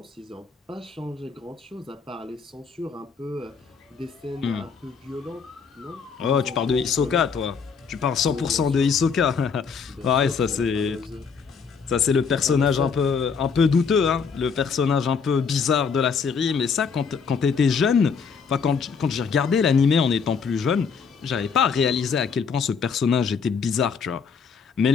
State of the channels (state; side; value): quieter; right; 5.8 dB